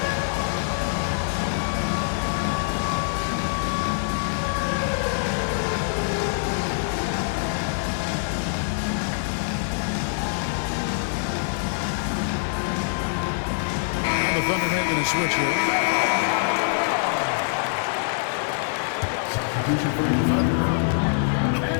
The Thunder making a switch here. Substitution for your Thunder.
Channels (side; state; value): right; silent; 62 dB below the other